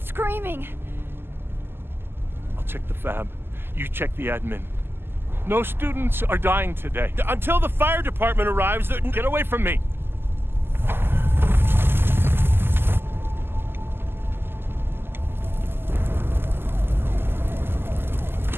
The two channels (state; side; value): late; left; 0.11 ms